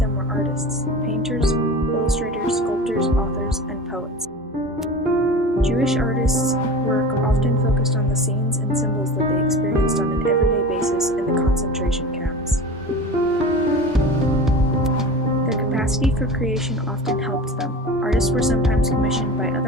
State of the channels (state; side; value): normal; both; correlation 0.33